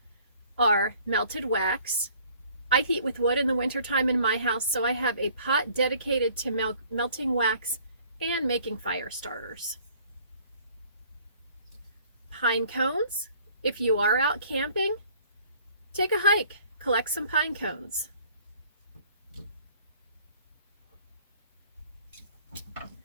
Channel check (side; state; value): both; inverted; correlation -0.55